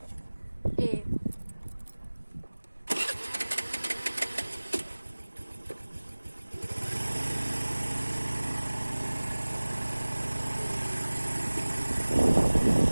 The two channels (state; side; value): inverted; both; correlation -1.00